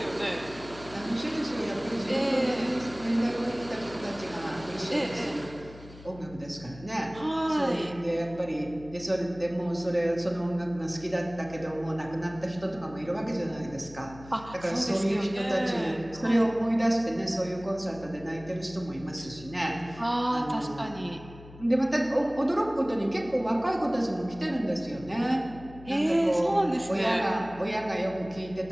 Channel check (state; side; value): noise; left; hum, 18 dB below the sound